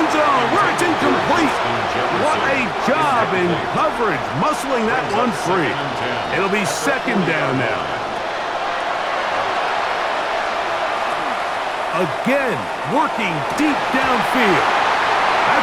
zone where it's incomplete. What a job in coverage, muscling that one free. It'll be second down now. Again, working deep downfield.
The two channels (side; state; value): both; identical; correlation 1.00